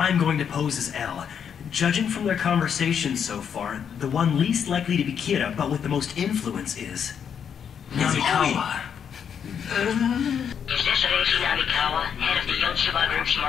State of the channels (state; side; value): quieter; right; 7.8 dB